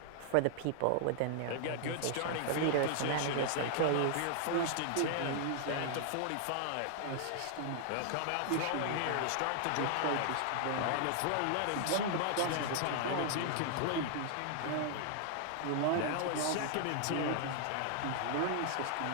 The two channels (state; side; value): different; both; correlation 0.00